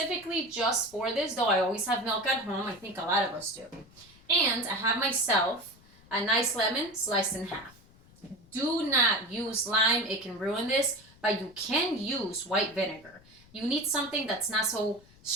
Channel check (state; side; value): noise; left; rumble, 26 dB below the sound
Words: just for this, though I always have milk at home. I think a lot of us do. And I have myself a nice lemon sliced in half. Do not use lime. It can ruin this, but you can use white vinegar. You need something that's not so